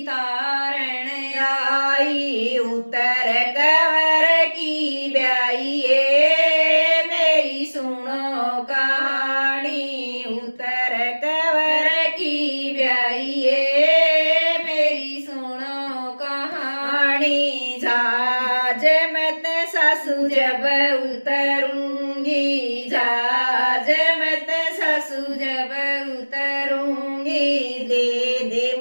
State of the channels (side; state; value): both; inverted; correlation -1.00